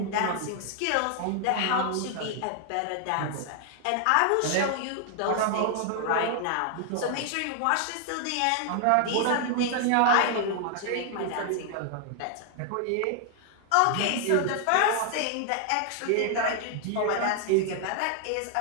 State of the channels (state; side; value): different; both; correlation 0.00